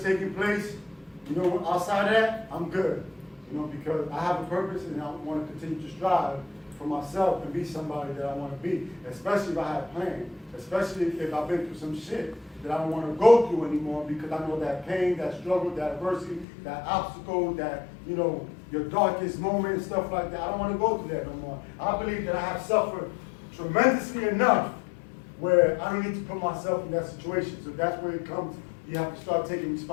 taking place, you know, outside of that, I'm good. You know, because I have a purpose and I want to continue to strive for myself and be somebody that I want to be, especially if I have plans, especially if I've been through some shit that I don't want to go through anymore because I know that pain, that struggle, that adversity, that obstacle, that, you know, your darkest moment and stuff like that. I don't want to go through that no more. I believe that I have suffered tremendously enough where I don't need to put myself in that situation. So that's where it comes. You have to start taking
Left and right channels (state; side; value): drops out; right; at 16.4 s